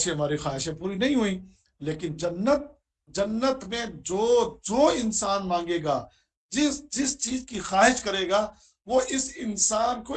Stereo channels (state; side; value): identical; both; correlation 1.00